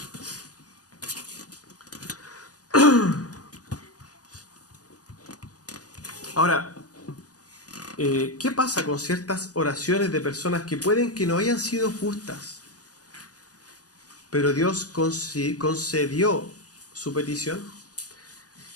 Ahora, ¿qué pasa con ciertas oraciones de personas que pueden que no hayan sido justas, pero Dios concedió su petición?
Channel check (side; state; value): right; late; 0.68 ms